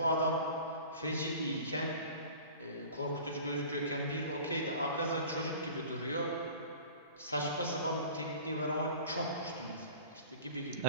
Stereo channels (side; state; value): both; inverted; correlation -0.42